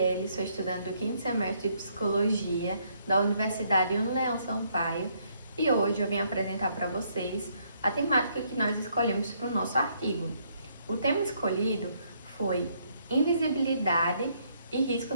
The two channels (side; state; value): both; inverted; correlation -0.71